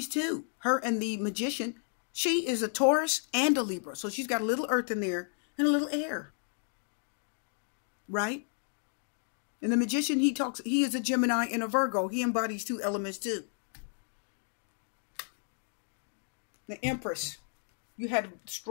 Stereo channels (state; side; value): silent; right; 56 dB below the other